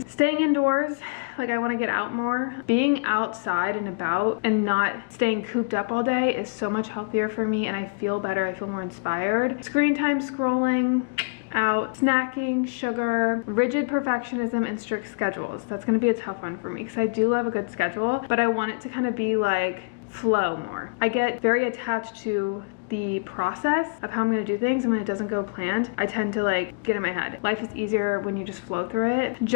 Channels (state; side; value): quieter; right; 35.1 dB